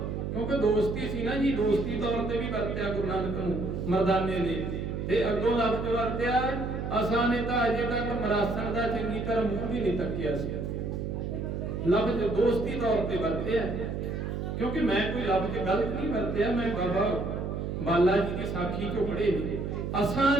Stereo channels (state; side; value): noise; right; hum, 3 dB below the sound